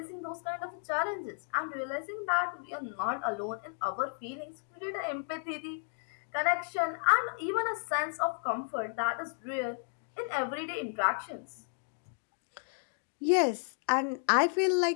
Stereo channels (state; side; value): silent; right; 56 dB below the other